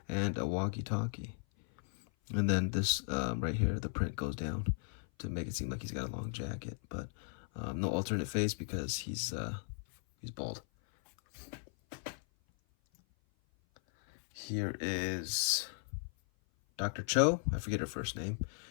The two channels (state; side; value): silent; right; 53 dB below the other